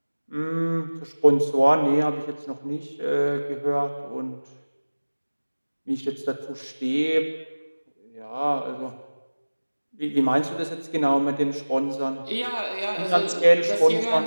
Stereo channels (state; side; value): inverted; both; correlation -1.00